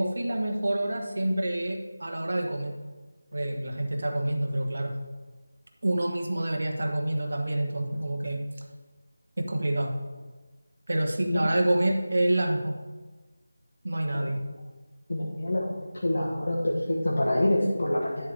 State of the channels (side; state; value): both; inverted; correlation -0.97